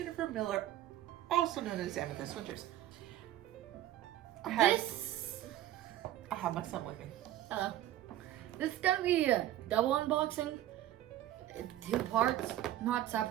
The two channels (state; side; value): quieter; left; 13.3 dB